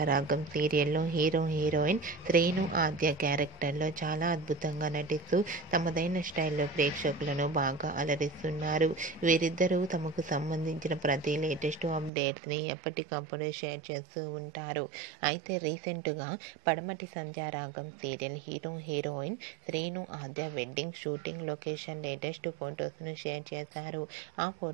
సీరియల్లో హీరోయిన్ శ్రీను ఆద్య క్యారెక్టర్లో చాలా అద్భుతంగా నటిస్తూ తమదైన స్టైల్లో ప్రేక్షకులను బాగా అలరిస్తున్నారు. వీరిద్దరూ తమకు సంబంధించిన ప్రతి లేటెస్ట్ అప్డేట్స్ని ఎప్పటికప్పుడు షేర్ చేస్తూ ఉంటారు. అయితే రీసెంట్గా Padamati Sandhyaragam serial heroine Srinu Aadya wedding shooting location latest ఫొటోస్ను షేర్ చేశారు. ఆ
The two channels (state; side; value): drops out; left; at 12.1 s